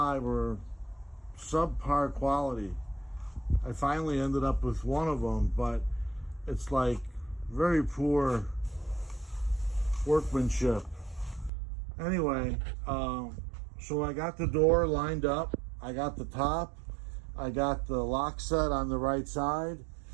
were subpar quality. I finally ended up with one of them, but it's like very poor workmanship. Anyway, so I got the door lined up. I got the top. I got the lock set on the right side.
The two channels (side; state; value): left; drops out; at 11.5 s